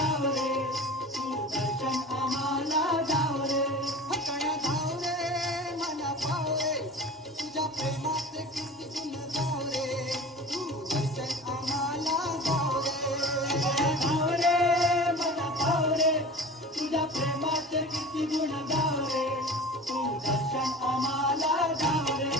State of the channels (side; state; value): both; normal; correlation 0.36